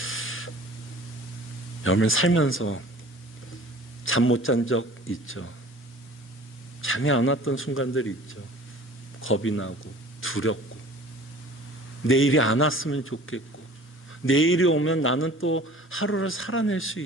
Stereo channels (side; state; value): both; normal; correlation 0.46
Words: 여러분 살면서 잠 못 잔 적 있죠? 잠이 안 왔던 순간들이 있죠. 겁이 나고 두렵고 내일이 안 왔으면 좋겠고 내일이 오면 나는 또 하루를 살아낼 수